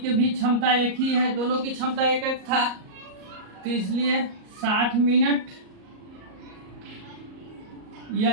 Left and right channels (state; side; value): late; left; 38 ms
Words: भी क्षमता एक ही है, दोनों की क्षमता एक एक था, तो इसलिए 60 मिनट या